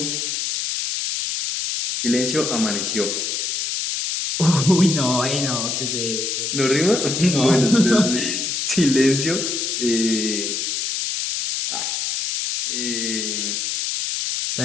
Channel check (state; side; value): noise; left; hiss, 2 dB below the sound